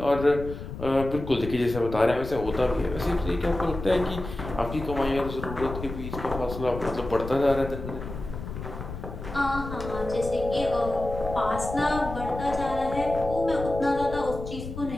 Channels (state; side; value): noise; left; rumble, 9 dB below the sound